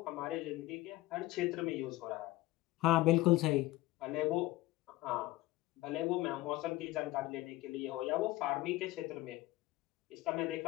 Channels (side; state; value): right; quieter; 17.7 dB